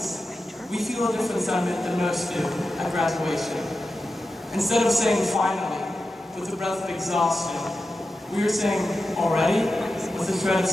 we feel a different sentiment than most do at graduation. Instead of saying finally, with a breath of exhaustion, we are saying already, with a shred of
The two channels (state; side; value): normal; both; correlation 0.92